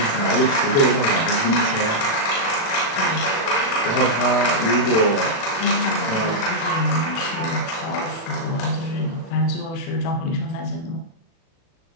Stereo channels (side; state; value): right; late; 36 ms